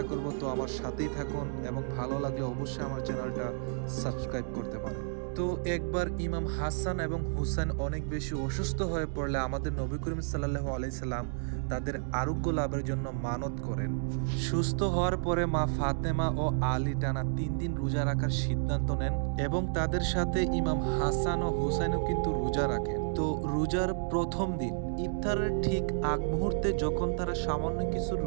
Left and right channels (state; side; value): silent; left; digital silence